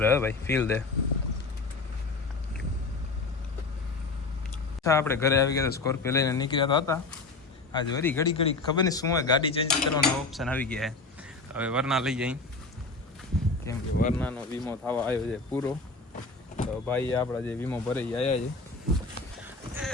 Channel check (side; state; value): right; quieter; 3.7 dB